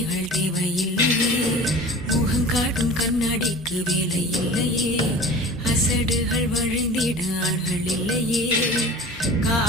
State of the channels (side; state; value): both; normal; correlation 0.40